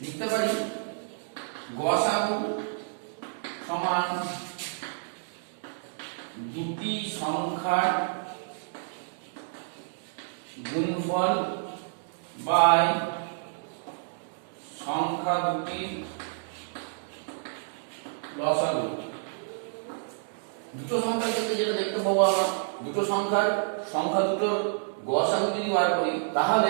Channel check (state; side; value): silent; left; digital silence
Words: লিখতে পারি গসাগু সমান দুটি সংখ্যার গুণফল বাই সংখ্যা দুটির লসাগু। দুটো সংখ্যার ক্ষেত্রে যেটা দেখতে পাবো আমরা, দুটো সংখ্যা দুটোর গসাগু যদি বার করি